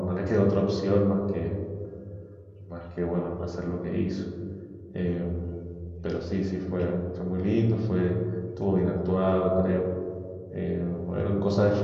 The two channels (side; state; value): both; identical; correlation 1.00